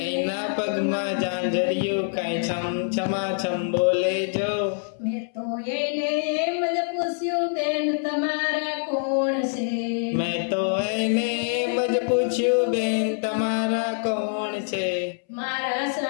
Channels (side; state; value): right; silent; 62 dB below the other